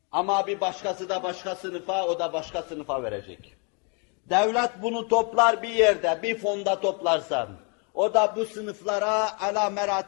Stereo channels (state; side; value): quieter; right; 35.4 dB